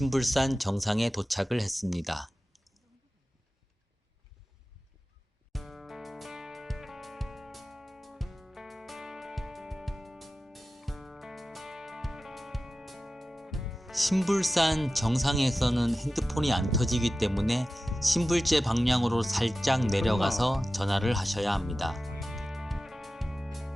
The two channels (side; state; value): both; normal; correlation 0.95